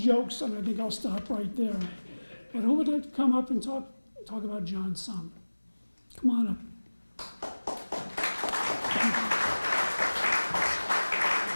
and I think I'll stop right there. But who would like to come up and talk about John some? Come on up.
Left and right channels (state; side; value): inverted; both; correlation -1.00